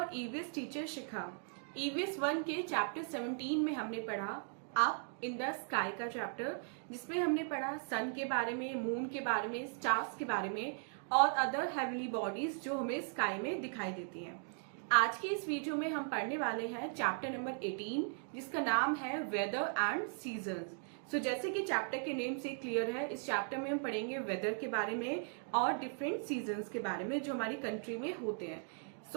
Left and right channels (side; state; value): left; silent; 52 dB below the other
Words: EVS teacher Shikha. EVS 1 के chapter 17 में हमने पढ़ा अप इन द स्काई का चैप्टर, जिसमें हमने पढ़ा सन के बारे में, मून के बारे में, स्टार्स के बारे में और अदर हेवनली बॉडीज जो हमें स्काई में दिखाई देती हैं। आज के इस वीडियो में हम पढ़ने वाले हैं चैप्टर नंबर 18, जिसका नाम है वेदर एंड सीजन्स। सो जैसे कि चैप्टर के नेम से क्लियर है, इस चैप्टर में हम पढ़ेंगे वेदर के बारे में और डिफरेंट सीजन्स के बारे में जो हमारी कंट्री में होते हैं।